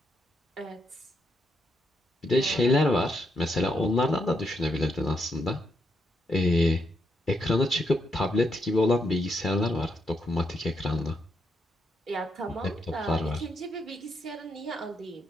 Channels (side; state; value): both; normal; correlation 0.79